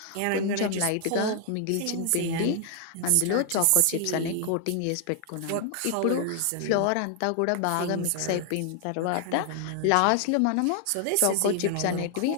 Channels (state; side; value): different; both; correlation 0.00